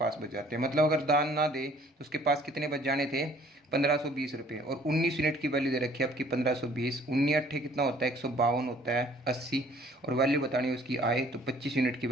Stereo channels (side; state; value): both; normal; correlation 0.57